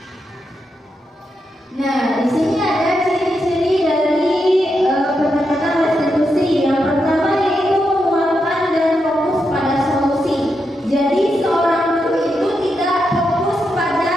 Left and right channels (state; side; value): normal; both; correlation 0.84